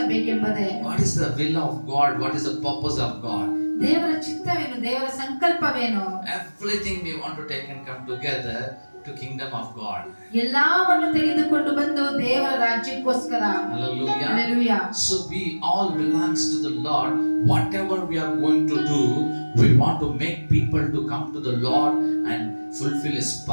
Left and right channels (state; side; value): inverted; both; correlation -1.00